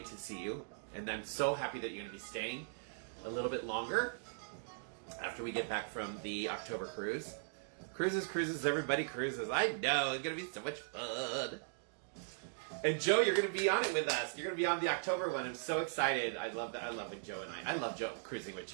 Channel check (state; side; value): silent; left; digital silence